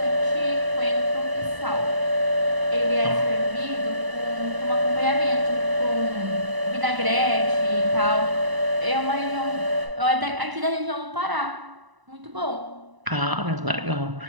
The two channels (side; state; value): left; late; 1.0 ms